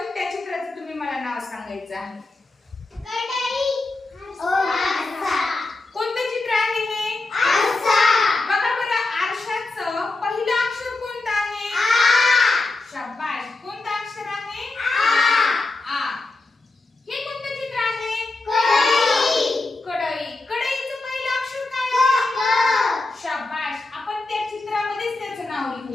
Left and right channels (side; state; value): right; quieter; 3.3 dB